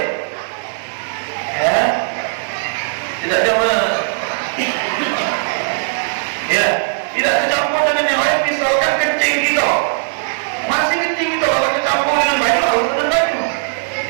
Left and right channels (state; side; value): silent; left; digital silence